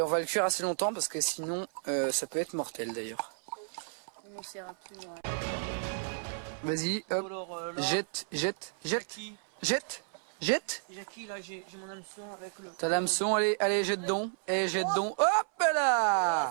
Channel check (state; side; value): silent; left; 55 dB below the other